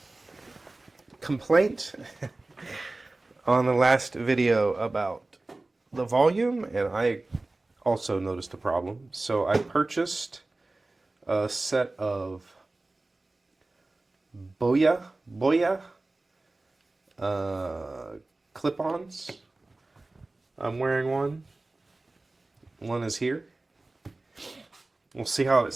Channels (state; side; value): quieter; left; 3.0 dB